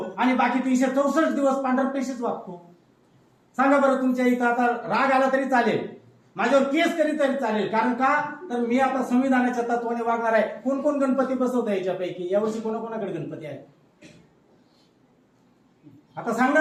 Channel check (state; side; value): identical; both; correlation 1.00